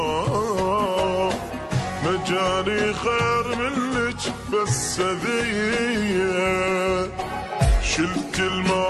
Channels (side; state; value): both; identical; correlation 1.00